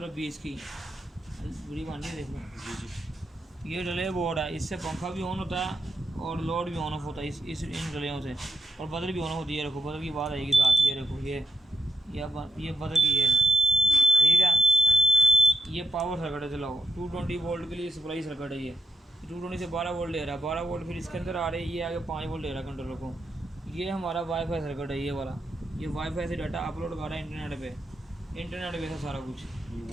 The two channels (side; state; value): both; normal; correlation 0.84